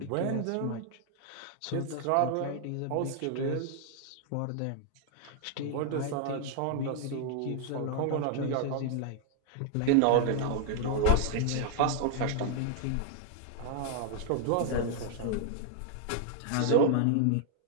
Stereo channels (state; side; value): different; both; correlation 0.00